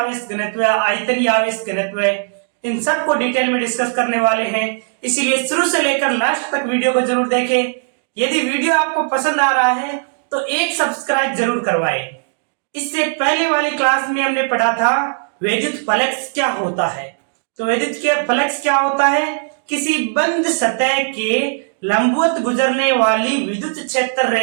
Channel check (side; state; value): left; silent; digital silence